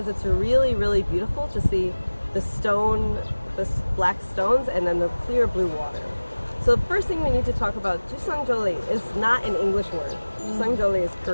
it's really, really beautiful to see the black stones and then the clear blue water. So the first thing we need to talk about, Jusangjolli is not an English word. Jusangjolli is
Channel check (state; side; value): inverted; both; correlation -1.00